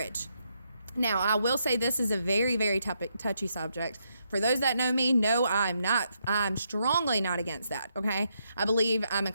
Now, I will say this is a very, very touchy subject. For those that know me, no, I'm strongly not against that. Okay? I believe I'm a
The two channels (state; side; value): inverted; both; correlation -0.79